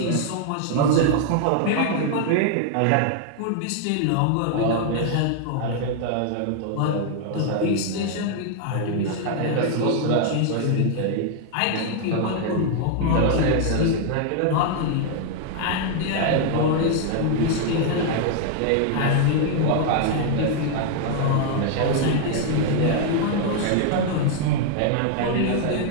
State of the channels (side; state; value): both; different; correlation 0.00